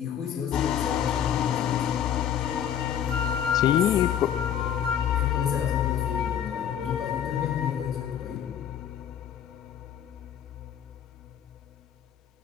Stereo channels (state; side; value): quieter; right; 9.3 dB